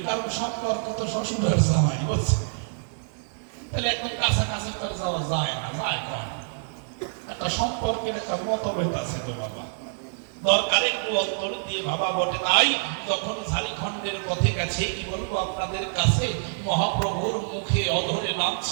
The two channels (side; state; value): left; silent; digital silence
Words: কারণ সম্পর্ক তো শ্বশুরের জামাই বলছে, তাহলে একদম কাছাকাছি করে যাওয়া যায় না, যায় কম একটা সম্পর্কের একটা মতভেদ আছে তো বাবা। দরকার একটু অন্তর দিয়ে ভাবা বটে। তাই যখন ঝাড়খণ্ডের পথে গেছে, কি বলবো আপনাদের কাছে, মহাপ্রভুর মুখে অধরে নাম